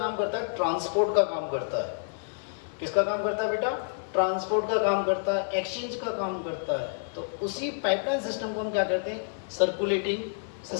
करता है? ट्रांसपोर्ट का काम करता है। किसका काम करता है बेटा? ट्रांसपोर्ट का काम करता है, एक्सचेंज का काम करता है। तो उसी पाइपलाइन सिस्टम को हम क्या करते हैं? सर्कुलेटिंग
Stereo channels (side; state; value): right; silent; digital silence